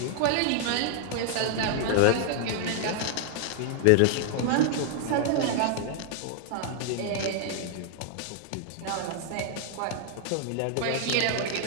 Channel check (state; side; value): different; both; correlation 0.00